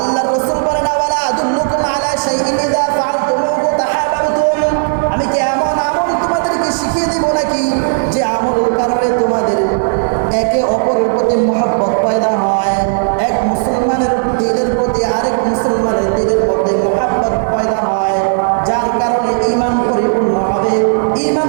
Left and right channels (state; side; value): silent; left; digital silence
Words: রাসূল বলেন, ওয়ালা আদুল্লুকুম আলা শাইইন ইযা ফাআলতুমুহু তাহাব্বাতুম। আমি কি এমন আমল তোমাদেরকে শিখিয়ে দিব নাকি যে আমলের কারণে তোমাদের একে অপরের প্রতি মহব্বত পয়দা হয়? এক মুসলমানের দিলের প্রতি আরেক মুসলমানের দিলের মধ্যে মহব্বত পয়দা হয়, যার কারণে ঈমান পরিপূর্ণ হবে।